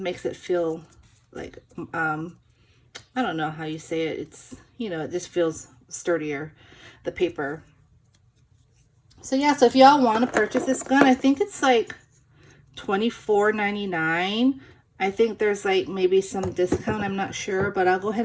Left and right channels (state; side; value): identical; both; correlation 1.00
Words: makes it feel like I don't know how you say it. It's it just feels sturdier, the paper. So yeah, so if y'all want to purchase this gun, I think it's like $24.99. I think there's like maybe some discount, I'm not sure, but I'll go ahead